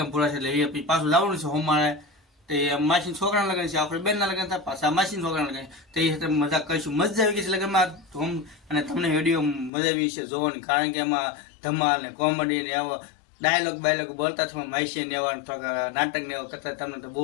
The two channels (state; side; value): drops out; right; at 9.7 s